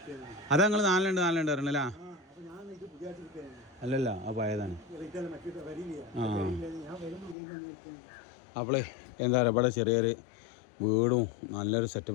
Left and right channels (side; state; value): right; drops out; at 7.4 s